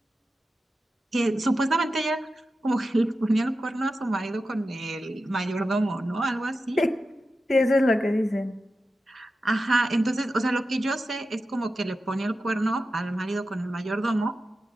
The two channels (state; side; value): normal; both; correlation 0.92